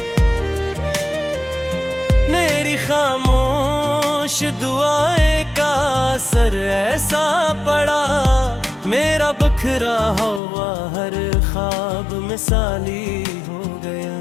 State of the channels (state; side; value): drops out; right; at 10.4 s